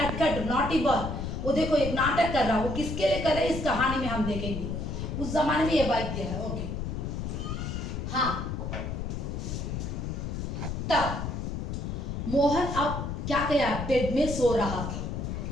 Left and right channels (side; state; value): left; noise; rumble, 4 dB below the sound